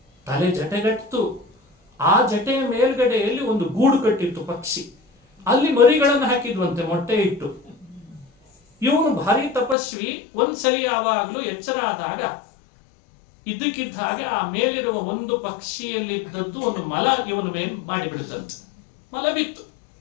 ತಲೆ ಜಟೆಗಟ್ಟು. ಆ ಜಟೆಯ ಮೇಲ್ಗಡೆಯಲ್ಲಿ ಒಂದು ಗೂಡು ಕಟ್ಟಿತ್ತು ಪಕ್ಷಿ, ಅಲ್ಲಿ ಮರಿಗಳನ್ನು ಹಾಕಿದ್ವಂತೆ ಮೊಟ್ಟೆ ಇಟ್ಟು. ಇವನು ಭಾರಿ ತಪಸ್ವಿ. ಒಂದ್ಸಲಿ ಯಾವಾಗಲೂ ಎಚ್ಚರ ಆದಾಗ ಇದ್ದಕ್ಕಿದ್ದ ಹಾಗೆ ಆ ಮೇಲಿರುವ ಒಂದು ಪಕ್ಷಿಯಲ್ಲಿದ್ದದ್ದು ಒಂದು ಮಲ ಇವನ ಮೇಲೆ ಮಾಡಿಬಿಡುತ್ತಂತೆ. ಮಲ ಬಿತ್ತು.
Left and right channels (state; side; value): drops out; right; at 9.8 s